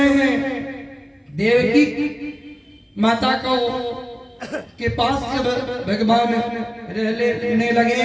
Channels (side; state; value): both; identical; correlation 1.00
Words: देवकी माता को के पास जब भगवान रहने लगे,